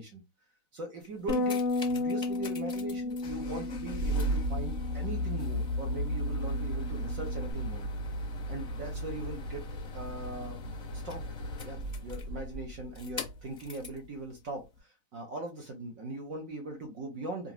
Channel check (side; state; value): left; late; 4.0 ms